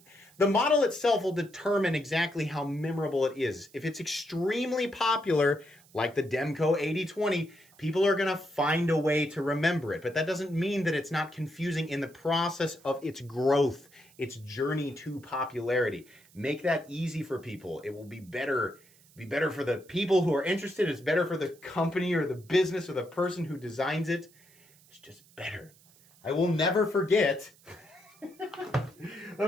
the model itself will determine exactly how memorable it is. If it's extremely popular, like the Demco 8020, people are going to find a way to remember it. But that doesn't mean that it's not confusing in the process of its growth, its journey to popularity. Make that easy for people. It will be better for the people who are interested. It's better for the company or the business or the person who designs it. It's just better. I will never forget.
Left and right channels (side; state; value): right; noise; hiss, 28 dB below the sound